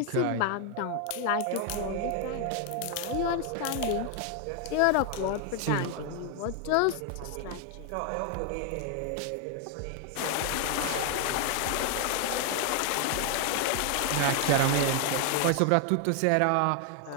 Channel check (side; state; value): both; different; correlation 0.00